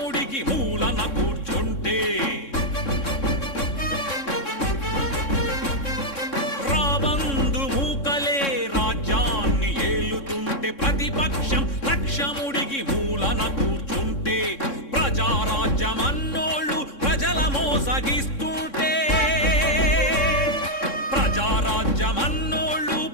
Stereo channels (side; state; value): right; late; 3.6 ms